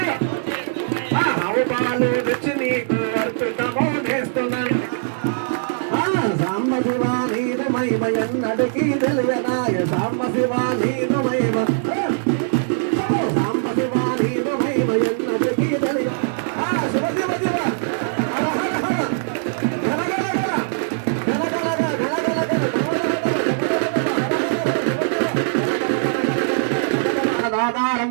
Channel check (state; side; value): silent; left; digital silence